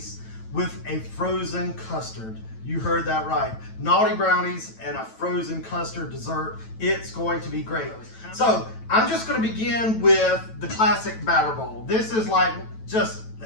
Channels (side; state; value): right; late; 9.1 ms